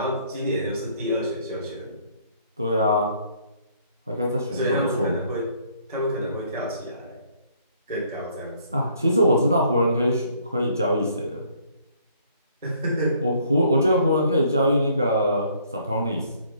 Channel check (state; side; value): inverted; both; correlation -0.62